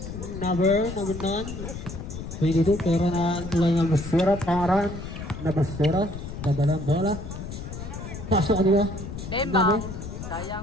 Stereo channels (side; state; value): left; noise; rumble, 8 dB below the sound